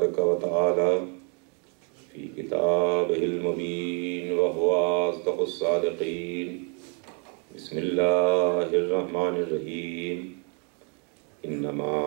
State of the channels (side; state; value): left; quieter; 37.8 dB